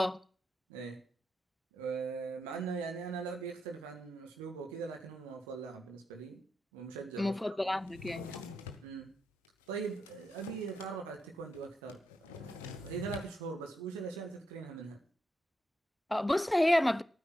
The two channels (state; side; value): normal; both; correlation 0.84